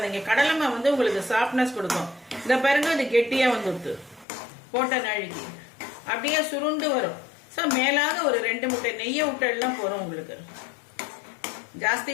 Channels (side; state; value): right; drops out; at 4.2 s